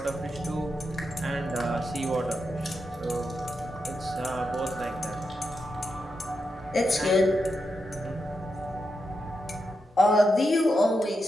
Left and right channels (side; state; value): both; normal; correlation 0.86